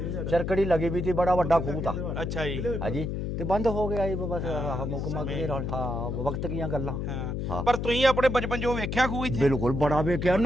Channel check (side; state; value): left; noise; hum, 3 dB below the sound